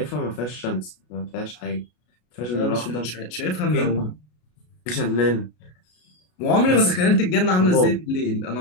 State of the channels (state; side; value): late; right; 33 ms